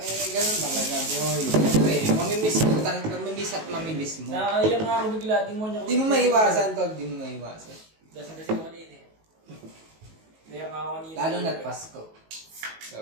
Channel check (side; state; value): left; late; 19 ms